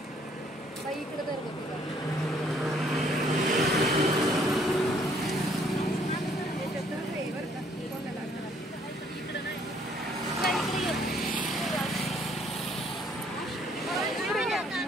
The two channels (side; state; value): both; normal; correlation 0.64